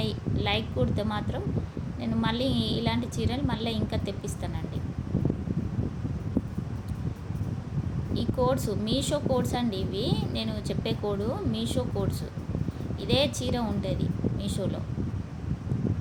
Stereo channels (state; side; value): identical; both; correlation 1.00